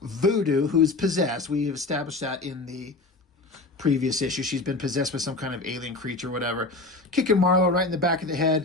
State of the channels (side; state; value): right; quieter; 3.3 dB